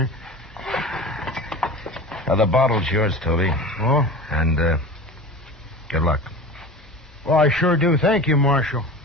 The bottle's yours, Toby. Oh? And, good luck. Well, I sure do. Thank you, Marshal.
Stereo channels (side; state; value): both; normal; correlation 0.34